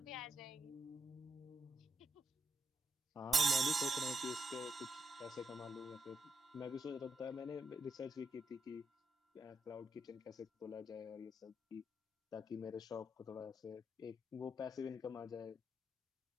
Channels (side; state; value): both; normal; correlation 0.81